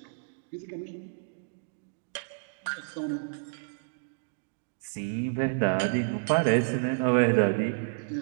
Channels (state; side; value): silent; left; digital silence